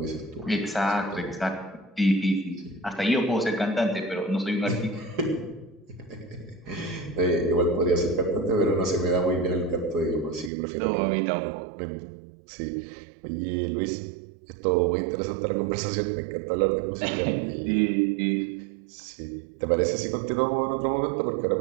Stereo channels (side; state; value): left; drops out; at 10.5 s